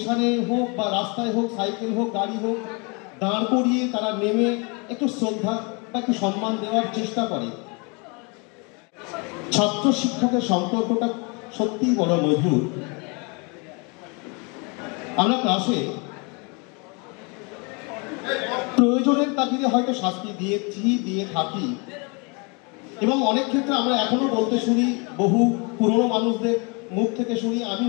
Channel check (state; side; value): quieter; right; 31.9 dB